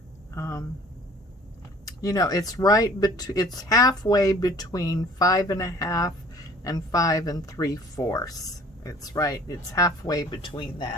You know, it's it's halfway between 5 1/2 and 5 3/4. It's right, it's halfway between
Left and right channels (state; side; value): normal; both; correlation 0.51